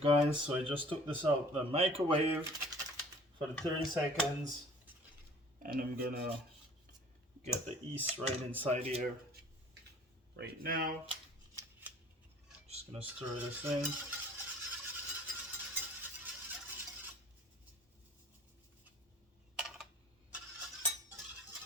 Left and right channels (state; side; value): normal; both; correlation 0.50